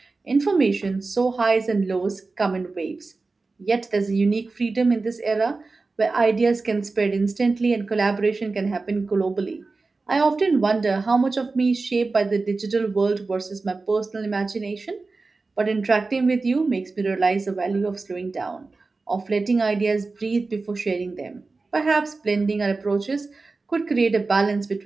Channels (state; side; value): quieter; left; 3.8 dB